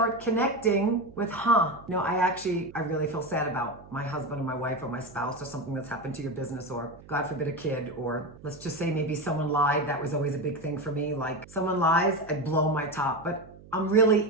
connecting with, I really feel sad about my husband or my wife or my spouse, or something that's happened to your business, or God forbid a kid, or let's just say maybe someone lied. That was always a big thing for me. Like, someone lies, I blow my top. But I'm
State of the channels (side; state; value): right; noise; hum, 20 dB below the sound